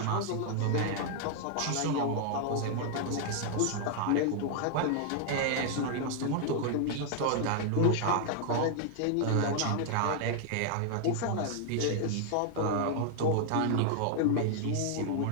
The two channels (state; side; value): different; both; correlation 0.00